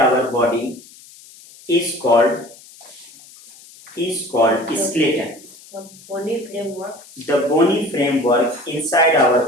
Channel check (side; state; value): left; noise; hiss, 22 dB below the sound